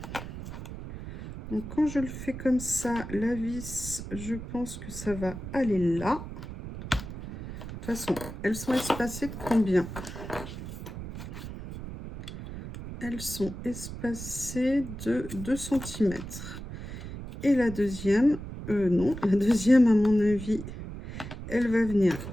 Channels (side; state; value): right; noise; rumble, 10 dB below the sound